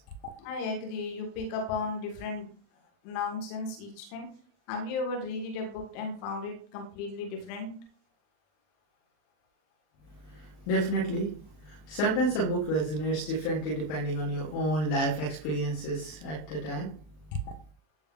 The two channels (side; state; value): right; late; 39 ms